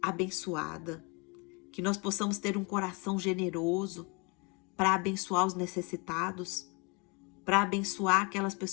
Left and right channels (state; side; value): quieter; right; 30.4 dB